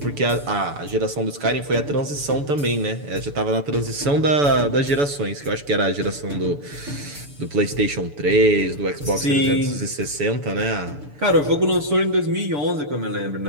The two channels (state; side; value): late; left; 6.9 ms